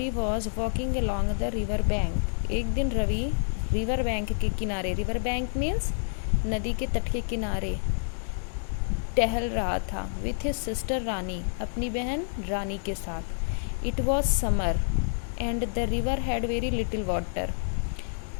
was walking along the river bank. एक दिन रवि river bank के किनारे, river bank means नदी के तट के किनारे टहल रहा था with his sister रानी, अपनी बहन रानी के साथ. It was summer and the river had very little water.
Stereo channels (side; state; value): right; silent; 59 dB below the other